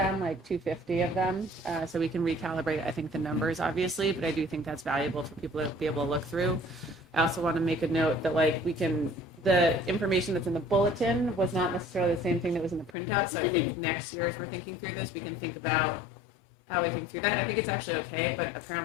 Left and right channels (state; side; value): drops out; right; at 13.0 s